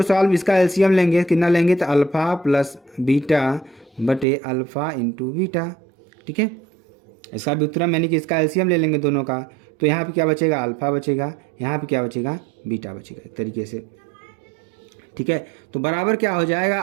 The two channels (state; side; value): drops out; left; at 4.2 s